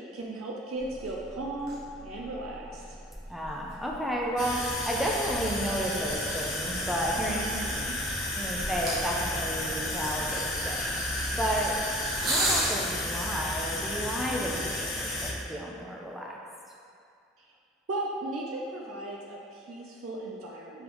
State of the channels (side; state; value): both; normal; correlation 0.45